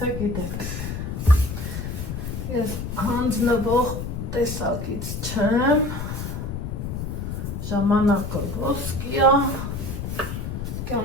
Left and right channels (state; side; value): noise; left; rumble, 5 dB below the sound